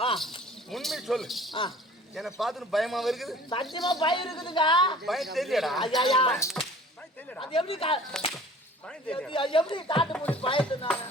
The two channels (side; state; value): both; normal; correlation 0.48